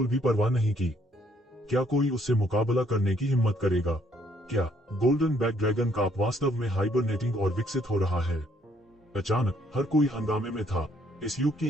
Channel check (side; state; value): both; normal; correlation 0.67